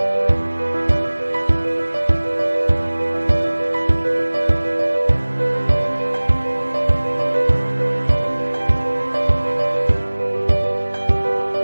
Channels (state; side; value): inverted; both; correlation -1.00